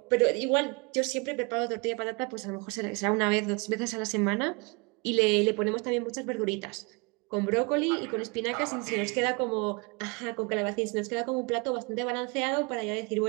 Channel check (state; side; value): quieter; left; 29.8 dB